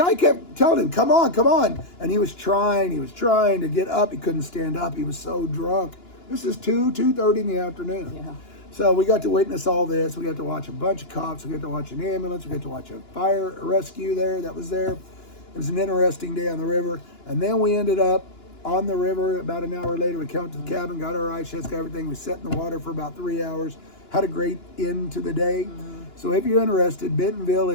kept telling him, come on. And he was trying to get up. He couldn't stand up. He was so drunk. This is 2:30 in the afternoon. Yeah. So we got to witness all this. We got to watch a bunch of cops. We got to watch an ambulance. We got to watch a fire rescue that was there. It was an interesting day on the river. And then we ended up on the river. About an hour later, we came up to the cabin, got our ice chest, got everything. We sat in the water for about 3 hours. Had a great end to the day. Mm-hmm. So if you're interested, Bentonville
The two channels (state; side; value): late; right; 2.9 ms